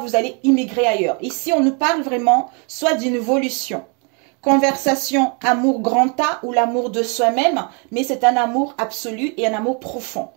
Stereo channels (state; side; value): quieter; left; 34.7 dB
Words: allez immigrer ailleurs. Ici, on nous parle vraiment soit d'une évolution. Conversation, amour grand A ou l'amour de soi-même, mais c'est un amour absolu et un amour profond.